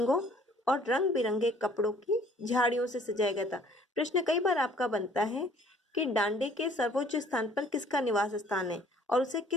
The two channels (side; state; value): both; normal; correlation 0.56